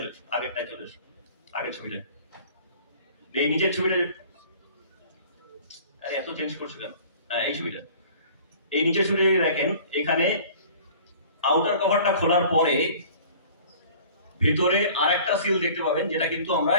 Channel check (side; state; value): both; inverted; correlation -0.48